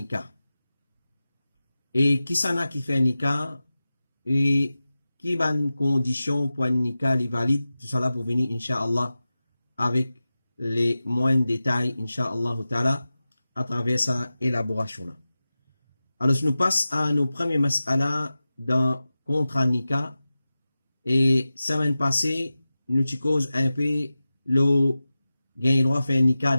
Et qui s'en a qui fait un nikah et qui va une condition pour un nikah les valide, tout ça là pour venir, Inch'Allah, avec les moindres détails, Inch'Allah ta'ala, à travers sa élaboration là. Alors, je nous passe à nos premiers mas'ala dans contrat nikah. Et semaine passée, nous te cause un peu le gain droit faire nikah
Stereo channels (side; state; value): both; inverted; correlation -0.95